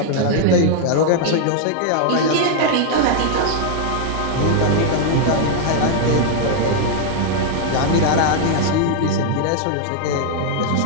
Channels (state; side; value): different; both; correlation 0.00